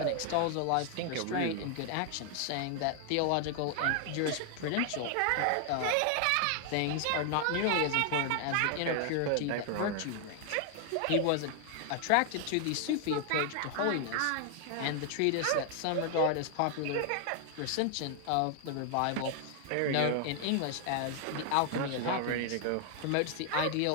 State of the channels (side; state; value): both; different; correlation 0.00